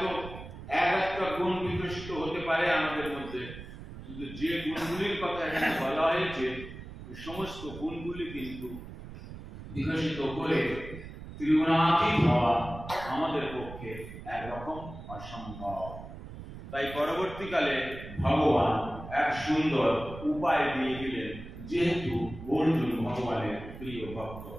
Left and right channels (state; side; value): noise; right; rumble, 12 dB below the sound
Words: একটা গুণ বিকশিত হতে পারে আমাদের মধ্যে, কিন্তু যে গুণগুলির কথা এখানে বলা হয়েছে সমস্ত গুণগুলি কিন্তু বিকশিত করে ত্রিগুণাতীত হওয়া আমাদের পক্ষে একরকম অসম্ভব। তাই পরবর্তীকালে ভগবান এক সুন্দর উপায় দিয়ে দিলেন, যেহেতু অর্জুন ভগবানের প্রিয় ভক্ত।